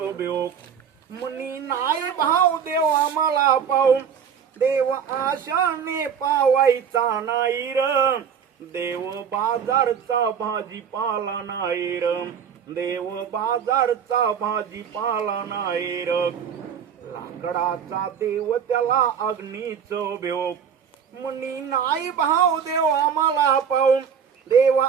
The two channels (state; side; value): quieter; left; 7.4 dB